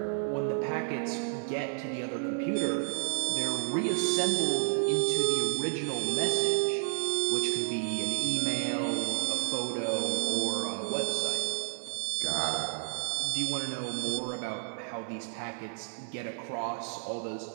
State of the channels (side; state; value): left; silent; digital silence